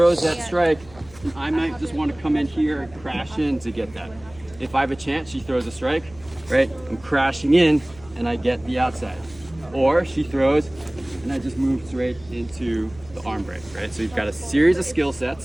that strike, and I might just want to come in here and crash in to get that. If I have a chance, she throws a strike, right? I'm crashing in, and I get the outside. Or she throws, and I just move straight into the arm break, right? So you've got a series of skill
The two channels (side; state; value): right; noise; hum, 23 dB below the sound